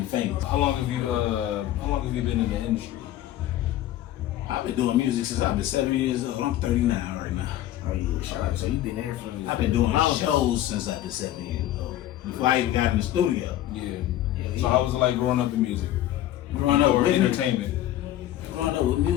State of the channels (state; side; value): quieter; right; 13.4 dB